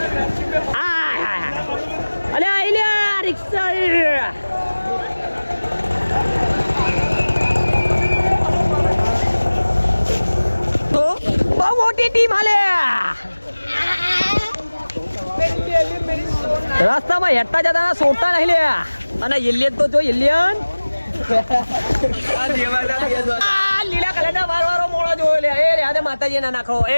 અલે આઈને રિક્ષા. તો બહુ મોટી ટીમ હાલે. રસ્તામાં હેઠતા જતા સોડતા નહીં લે. અને એલિયન તો જો એલિયન લીલા કલર ના વારો મોડો જોયો લે. એ રે આને માતાજી ના નાખો.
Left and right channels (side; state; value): both; inverted; correlation -1.00